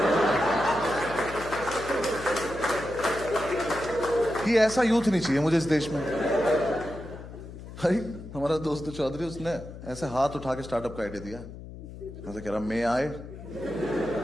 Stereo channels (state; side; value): noise; left; hum, 13 dB below the sound